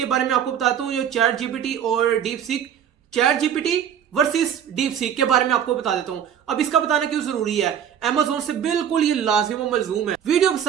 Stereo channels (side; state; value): left; quieter; 9.0 dB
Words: बारे में आपको बताता हूं जो चैट जीपीटी और deep seek, chat GPT versus deep seek के बारे में आपको बता देता हूं। अब इसका बताना क्यों जरूरी है, अमेज़न से बिल्कुल ये लाजिम व मलजूम है। वीडियो